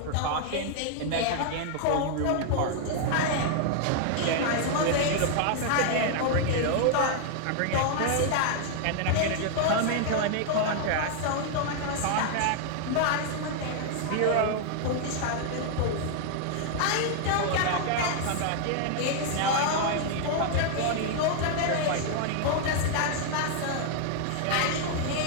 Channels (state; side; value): different; both; correlation 0.00